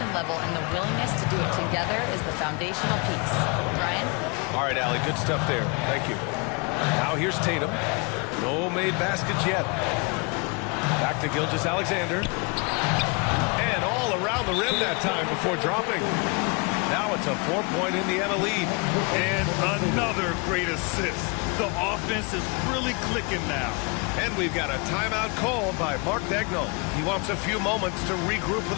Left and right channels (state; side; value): quieter; right; 31.4 dB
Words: level and the willingness to do it together is the foundational piece. Brian? All right, Allie, good stuff there. Thank you. Now here's Tatum. No made baskets yet. Back to Gilgeous-Alexander. And all around the rim that time before dropping. Now it's a 4-point Indiana lead. And another great assist. The offense is really clicking now. And we've got a timeout called by Mark Dagnall. He wants a few moments to regroup